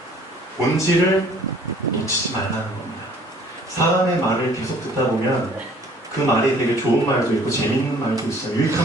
본질을 놓치지 말라는 겁니다. 사람의 말을 계속 듣다 보면 그 말이 되게 좋은 말도 있고 재밌는 말도 있어요.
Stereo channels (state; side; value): normal; both; correlation 0.55